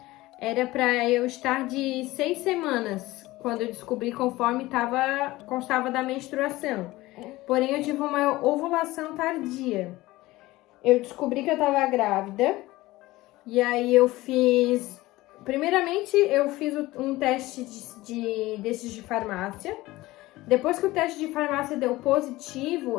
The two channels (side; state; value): right; quieter; 18.6 dB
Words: Era para eu estar de 6 semanas, quando eu descobri conforme constava da menstruação. Porém, eu tive uma ovulação tardia. Eu descobri que eu estava grávida. E aí eu fiz... Primeiramente, eu fiz um teste desses de farmácia. Depois que o teste de farmácia deu positivo,